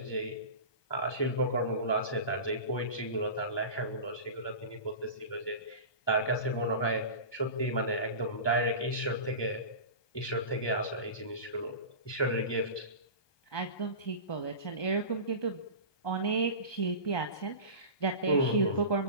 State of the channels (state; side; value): late; right; 1.2 ms